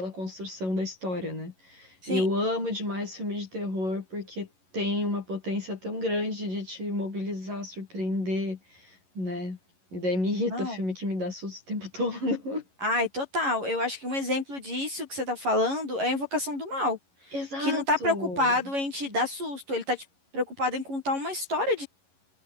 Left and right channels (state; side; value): late; left; 11 ms